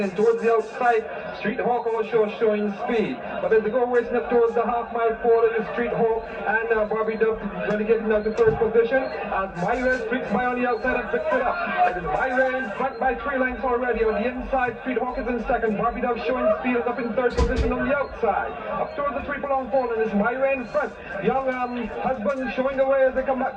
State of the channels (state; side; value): identical; both; correlation 1.00